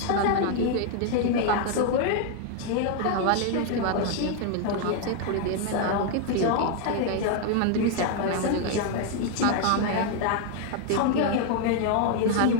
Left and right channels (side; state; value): both; different; correlation 0.00